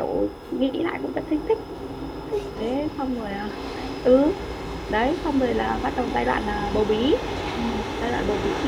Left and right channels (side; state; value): both; identical; correlation 1.00